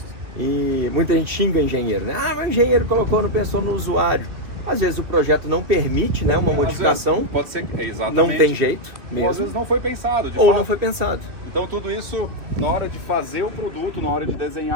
E muita gente xinga o engenheiro, né? Mas o engenheiro não pensou no usuário. Às vezes o projeto não permite, né, uma modificação. Pode ser que, exatamente. Não tem jeito mesmo. Às vezes não foi pensado. Não foi pensado. Então tudo isso, na hora de fazer o produto, na hora de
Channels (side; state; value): left; late; 2.6 ms